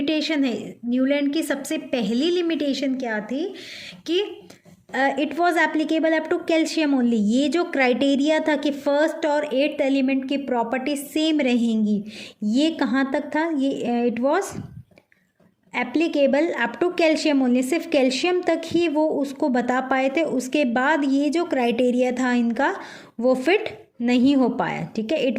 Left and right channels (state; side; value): identical; both; correlation 1.00